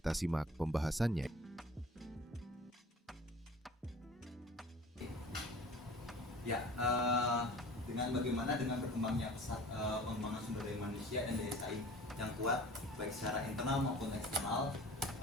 simak pembahasannya. Ya, dengan berkembangnya pesat pengembangan sumber daya manusia dan daya saing yang kuat baik secara internal maupun eksternal,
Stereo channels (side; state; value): both; normal; correlation 0.44